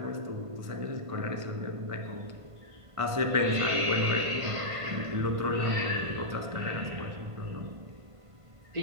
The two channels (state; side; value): late; left; 1.5 ms